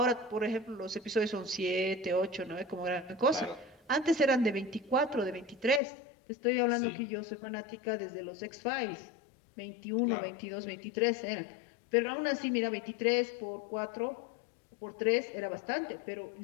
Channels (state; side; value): drops out; right; at 5.8 s